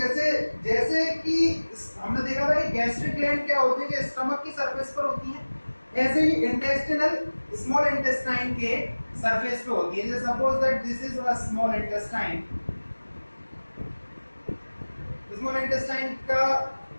कि हमने देखा था कि गैस्ट्रिक ग्लैंड क्या होती है कि स्टमक की सरफेस पर होती है, ऐसे ही इंटेस्टिनल स्मॉल इंटेस्टाइन के सरफेस पे होती है। जैसे suppose that this is a small intestine, small intestine का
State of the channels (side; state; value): both; inverted; correlation -1.00